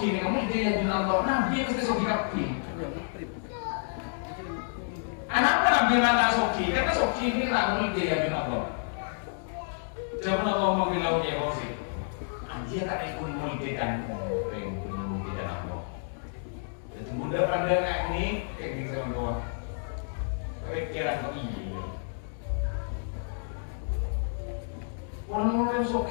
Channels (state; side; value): silent; right; digital silence